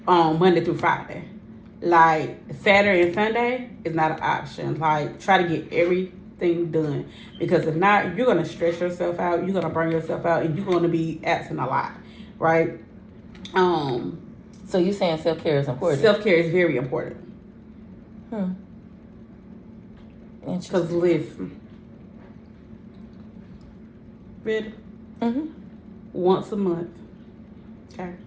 Monday through Friday. Like Saturday and Sunday is not an option. Like try to get everything done, because if not, you're gonna stress yourself out. You're gonna burn yourself out, and you're gonna be absent a lot, right? So you saying self-care is important? Self-care is very important. Because listen, ready? Once a month, okay,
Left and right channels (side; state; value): both; identical; correlation 1.00